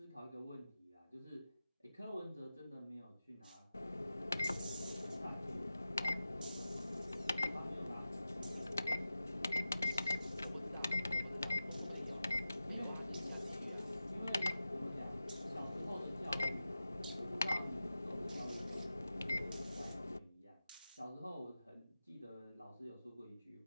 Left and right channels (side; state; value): both; inverted; correlation -0.94